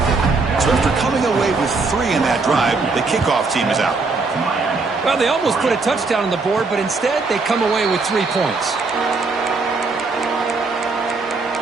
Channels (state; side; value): quieter; left; 4.0 dB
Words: So after coming away with 3 in that drive, the kickoff team is out. Well, they almost put a touchdown on the board, but instead they come away with 3 points.